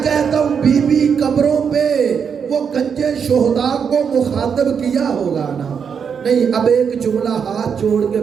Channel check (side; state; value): left; quieter; 6.8 dB